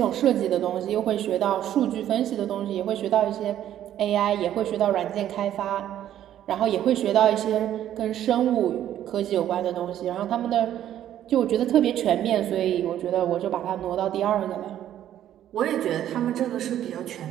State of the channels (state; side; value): quieter; left; 11.5 dB